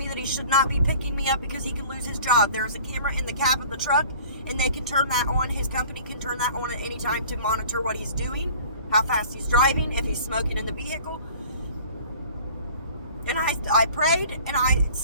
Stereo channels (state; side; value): inverted; both; correlation -0.47